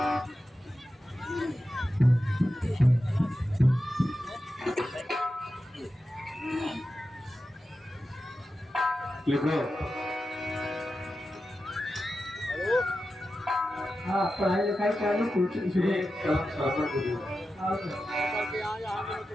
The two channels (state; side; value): normal; both; correlation 0.91